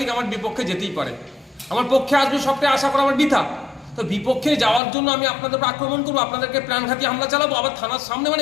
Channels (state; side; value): drops out; right; at 4.8 s